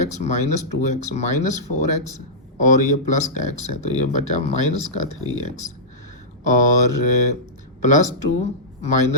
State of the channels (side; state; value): both; normal; correlation -0.14